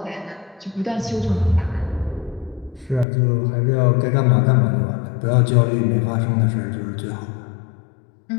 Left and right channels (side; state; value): right; drops out; at 3.1 s